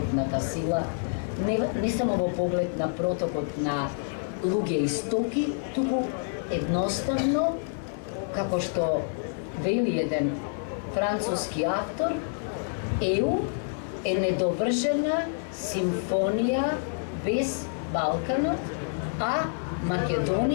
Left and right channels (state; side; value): silent; right; digital silence